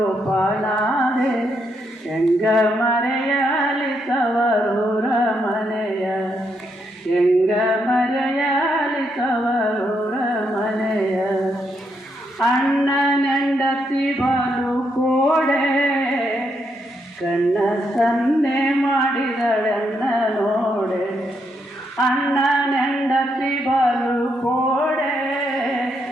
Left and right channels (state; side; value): normal; both; correlation 0.78